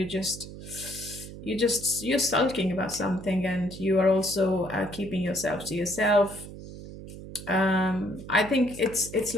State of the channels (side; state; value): right; noise; hum, 13 dB below the sound